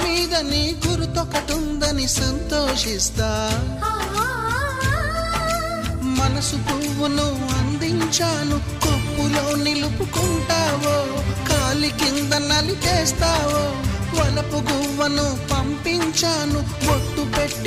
మీద నీ గురుతొకటుందని సంతోషిస్తా. మనసు పువ్వును అందించాను, కొప్పులో నిలుపుకుంటావో, కాలి కింద నలిపేస్తావో. వలపు గువ్వను పంపించాను, బొట్టు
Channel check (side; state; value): both; identical; correlation 1.00